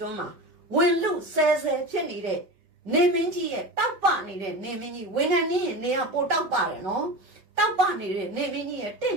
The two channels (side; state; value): left; late; 5.2 ms